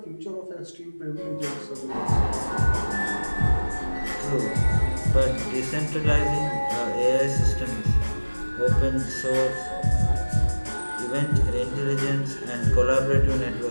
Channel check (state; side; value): inverted; both; correlation -1.00